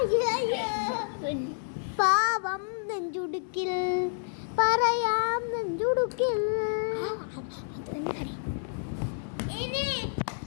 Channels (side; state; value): right; silent; 58 dB below the other